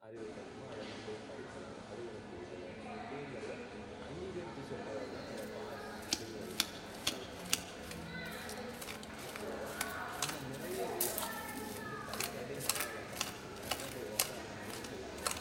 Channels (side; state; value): both; identical; correlation 1.00